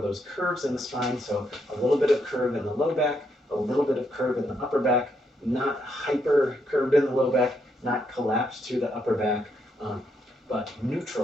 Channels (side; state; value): both; normal; correlation 0.77